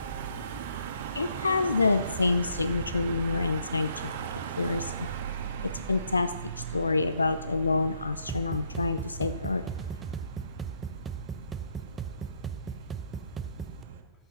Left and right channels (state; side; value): inverted; both; correlation -0.71